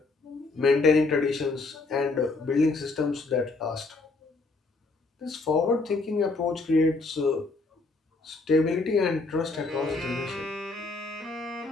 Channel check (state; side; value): quieter; right; 3.6 dB